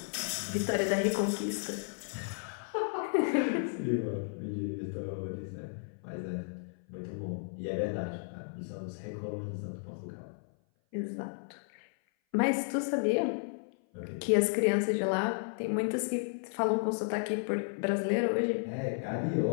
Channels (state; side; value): silent; right; 56 dB below the other